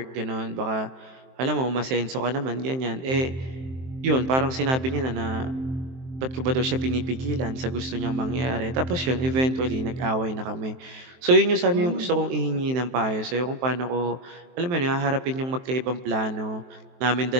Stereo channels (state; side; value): late; left; 23 ms